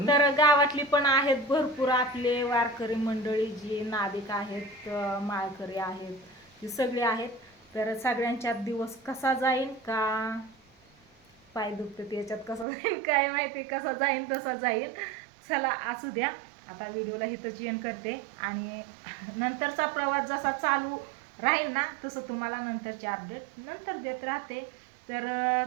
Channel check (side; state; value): left; drops out; at 12.7 s